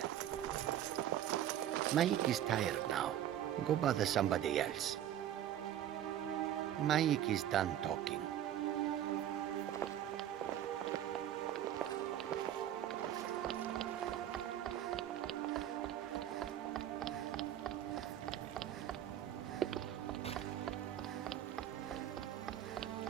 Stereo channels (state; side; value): quieter; left; 11.3 dB